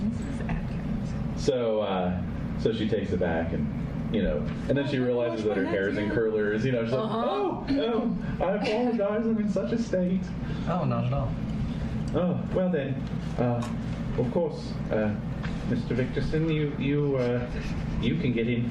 shall. So she takes it back and then she realizes that her hair is in curlers. She's like, oh, I apologize. I'm in such a state. Oh, not at all. Oh, well then, of course, Mr. Victorson, you can get in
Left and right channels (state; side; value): identical; both; correlation 1.00